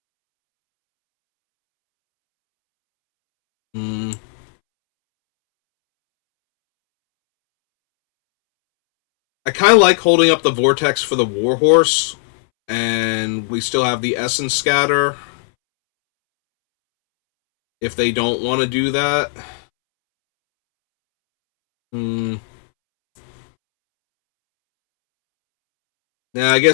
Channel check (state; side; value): silent; right; 68 dB below the other